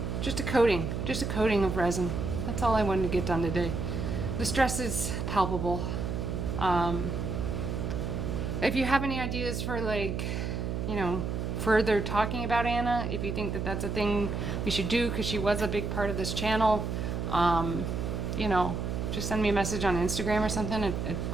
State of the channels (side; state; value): right; noise; hum, 2 dB below the sound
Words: just a coating of resin. That's all I wanted to get done today. The stress is palpable. If you have any ideas for, like, you know, further talking about Anna, if you think that that's a thing we should do, because she was a big part of this channel, you know, just send me a message on Instagram or something, a